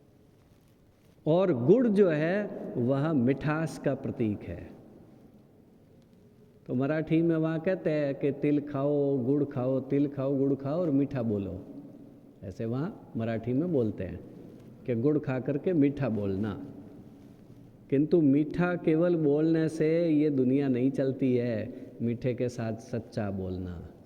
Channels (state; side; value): identical; both; correlation 1.00